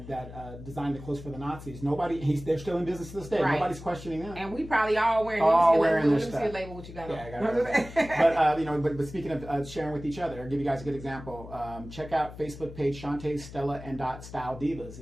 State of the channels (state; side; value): noise; left; hum, 14 dB below the sound